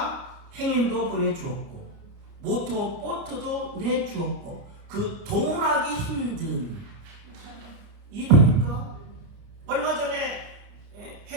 행인도 보내주었고 모터보트도 내주었고 그 동원하기 힘든 이해됩니까? 얼마 전에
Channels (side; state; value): left; late; 30 ms